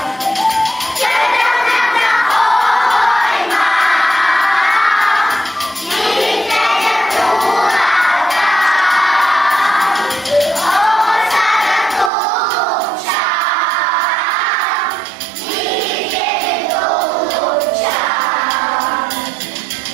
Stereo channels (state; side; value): drops out; left; at 12.1 s